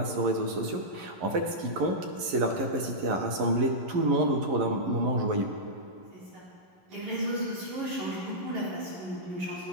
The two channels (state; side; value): late; left; 11 ms